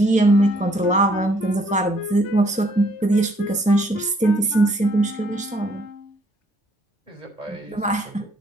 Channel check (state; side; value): normal; both; correlation 0.66